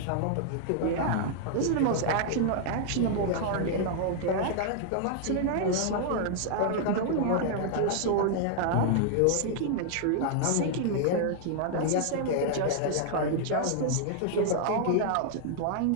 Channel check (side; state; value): both; different; correlation -0.01